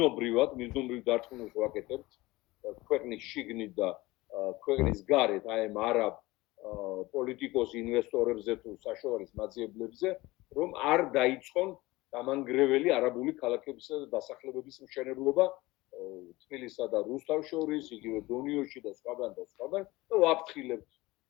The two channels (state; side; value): quieter; right; 20.1 dB